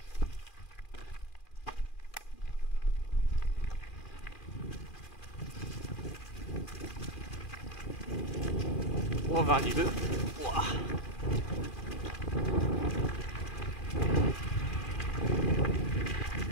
Oh, 22. Ouah.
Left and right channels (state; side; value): late; right; 2.4 ms